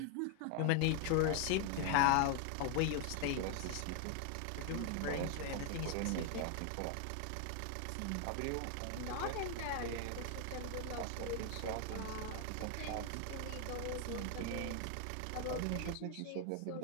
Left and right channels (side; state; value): both; different; correlation 0.00